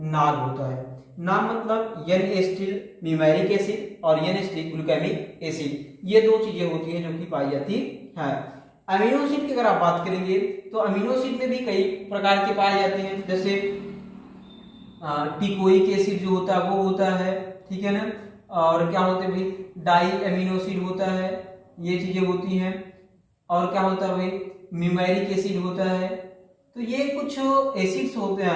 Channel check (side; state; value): both; identical; correlation 1.00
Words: होता है। नाम मतलब एन एसिटिल न्यूमेरिक एसिड और एन एसिटिल ग्लूटामिक एसिड, ये दो चीजें होती हैं जो कि पाई जाती है। अमीनो एसिड की अगर आप बात करेंगे तो अमीनो एसिड में भी कई प्रकार के पाए जाते हैं, जैसे टिकोइक एसिड जो होता है वो होता है, ठीक है ना। और क्या होते हैं भाई? डाई अमीनो एसिड होता है, ये चीजें होती हैं। और क्या होता है भाई? न्यूमेरिक एसिड होता है। तो ये कुछ एसिड्स होते हैं,